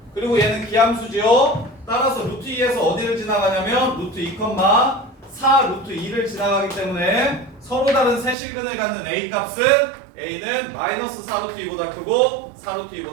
그리고 얘는 기함수지요. 따라서 루트 2에서 어디를 지나가냐면 루트 2, 4 루트 2를 지나가기 때문에 서로 다른 세 실근을 갖는 a 값은 a는 마이너스 4 루트 2보다 크고 4 루트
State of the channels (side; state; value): left; drops out; at 8.3 s